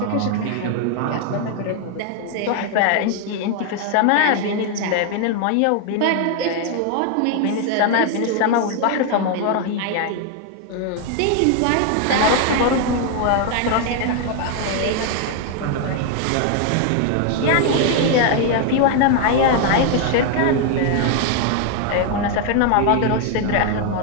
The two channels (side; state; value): both; different; correlation 0.00